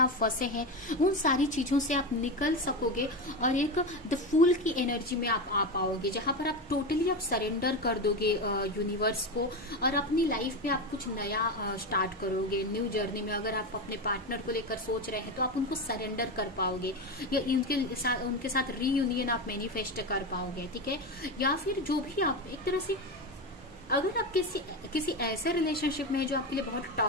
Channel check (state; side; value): normal; both; correlation 0.18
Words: फंसे हैं, उन सारी चीजों से आप निकल सकोगे और एक द फूल की एनर्जी में आप आ पाओगे, जहां पर आप टोटली आप सरेंडर कर दोगे यूनिवर्स को, और अपनी लाइफ में आप कुछ नया स्टार्ट करोगे, न्यू जर्नी में। अगर आप अपने पार्टनर को लेकर सोच रहे हैं तो आप उनको सरेंडर कर पाओगे, या उनके साथ रीयूनियन आप मैनिफेस्ट कर पाओगे, ठीक है। या फिर जो भी आप एक तरह से, अगर आप किसी ऐसे रिलेशनशिप में है जो आपके लिए बहुत